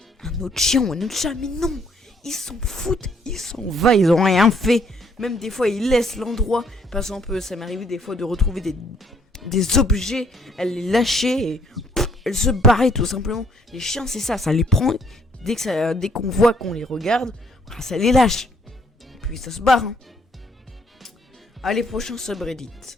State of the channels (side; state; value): both; normal; correlation 0.65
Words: un autre chien ou un autre chat. Mais non. Ils s'en foutent. Ils s'en vont. Ils ont rien fait. Même des fois, ils laissent l'endroit. Par exemple, ça m'est arrivé des fois de retrouver des objets, elle les lâchait et elle se barrait tout simplement. Les chiens c'est ça les prend dès qu'on voit qu'on les regarde, ça les lâche. Et puis ça se barre. Hein. Allez, prochain subreddit.